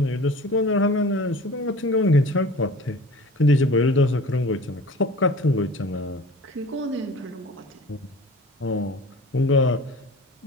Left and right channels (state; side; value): normal; both; correlation 0.41